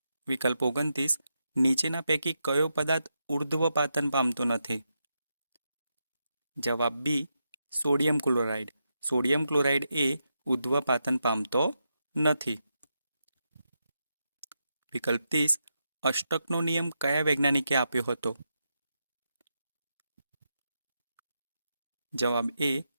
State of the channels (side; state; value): both; inverted; correlation -0.85